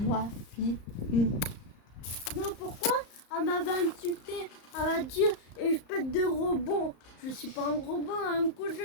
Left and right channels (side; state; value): right; late; 34 ms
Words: fille. Non, pourquoi? Elle m'avait insulté, elle m'a dit, espèce de robot. Je suis pas un robot, un coup